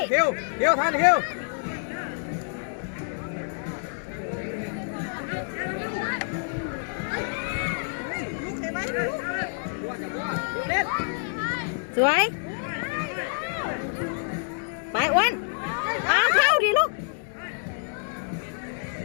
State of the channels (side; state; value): right; silent; digital silence